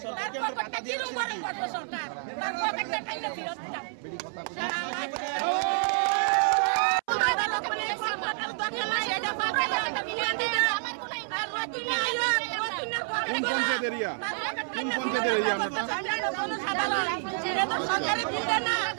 তার পকেটটা কিরম গরম করবে সরকার তার পকেটটা টাইনা ফিরত দাও সরকারি বিলটা না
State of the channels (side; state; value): left; silent; 59 dB below the other